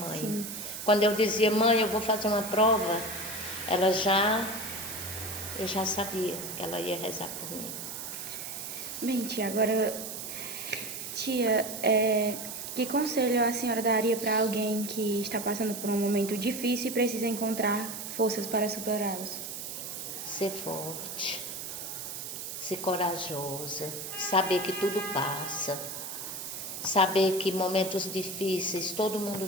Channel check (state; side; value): noise; right; hiss, 7 dB below the sound